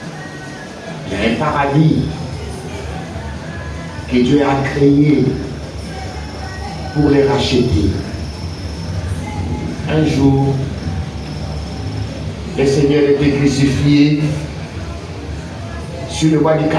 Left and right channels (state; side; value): identical; both; correlation 1.00